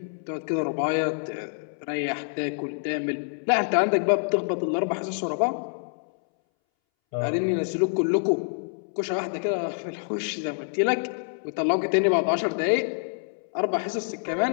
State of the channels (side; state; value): right; silent; 61 dB below the other